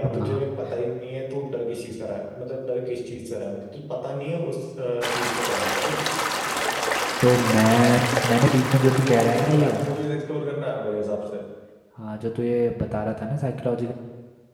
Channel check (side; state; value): both; identical; correlation 1.00